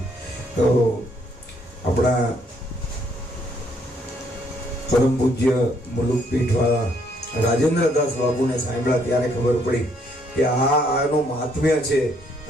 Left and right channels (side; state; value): both; normal; correlation 0.69